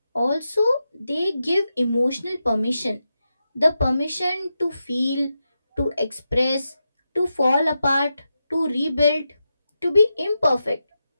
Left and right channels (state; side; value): inverted; both; correlation -0.89